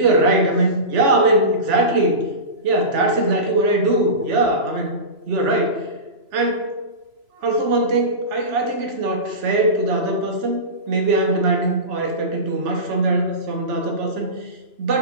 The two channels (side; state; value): left; late; 3.0 ms